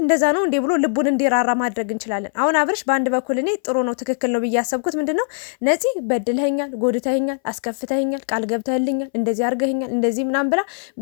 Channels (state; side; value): silent; right; 61 dB below the other